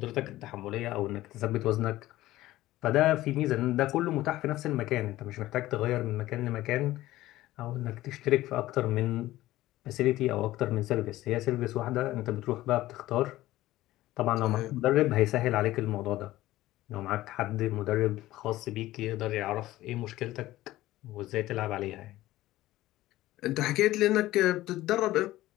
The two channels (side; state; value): right; quieter; 16.1 dB